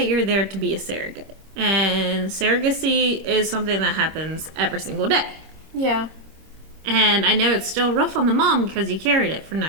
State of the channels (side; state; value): left; late; 26 ms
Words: you're there to be a surrogate. And surrogacy is something that happens every single day. Yeah. And I know it's still rough on the mom because you carried it for